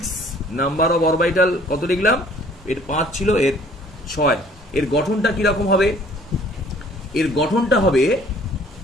নাম্বার অফ অরবিটাল কত লিখলাম? এর 5 ছিল, এর 6। এর গঠনটা কিরকম হবে? এর গঠনটা হবে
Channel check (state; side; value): normal; both; correlation 0.56